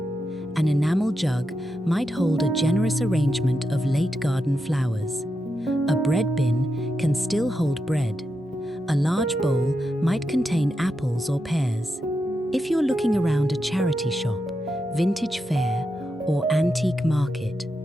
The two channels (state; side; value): normal; both; correlation 0.86